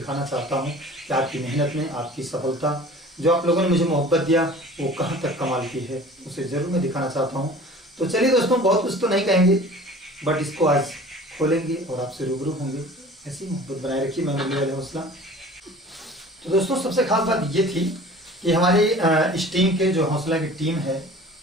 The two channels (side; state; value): both; normal; correlation 0.44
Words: चाहता हूँ कि आपकी मेहनत में आपकी सफलता, जो आप लोगों ने मुझे मोहब्बत दिया, वो कहाँ तक कमाल की है, उसे ज़रूर मैं दिखाना चाहता हूँ। तो चलिए दोस्तों, बहुत कुछ तो नहीं कहेंगे, बट इसको आज खोलेंगे और आपसे रूबरू होंगे। ऐसी मोहब्बत बनाए रखिए। मैं मुरली वाले हौसला। तो दोस्तों, सबसे खास बात ये थी कि हमारे इस टीम के जो हौसला की टीम है,